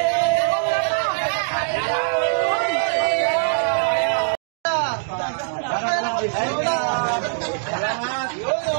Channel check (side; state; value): left; silent; digital silence